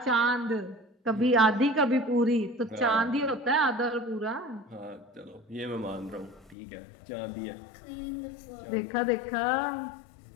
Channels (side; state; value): right; drops out; at 6.6 s